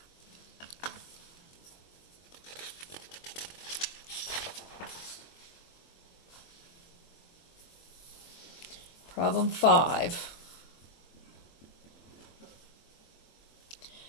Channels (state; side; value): late; right; 23 ms